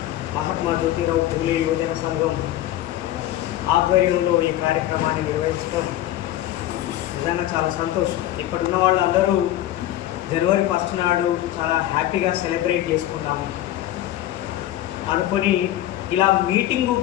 మహాత్మా జ్యోతిరావు పూలే యువజన సంఘం ఆధ్వర్యంలో ఈ కార్యక్రమాన్ని నిర్వహించడం నిజంగా చాలా సంతోషం. ఇక్కడ ఉన్న వాళ్ళందరూ జనవరి 1 నాడు చాలా హ్యాపీగా సెలబ్రేట్ చేసుకున్నాము అనుకొని ఇలా మీటింగ్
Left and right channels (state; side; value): quieter; right; 13.7 dB